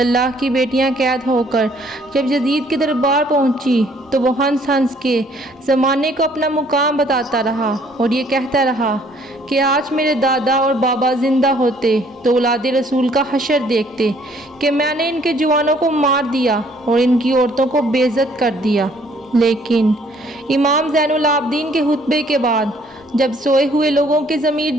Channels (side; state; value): both; normal; correlation 0.61